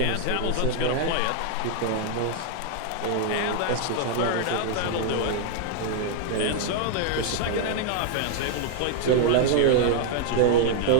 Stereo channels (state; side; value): different; both; correlation 0.00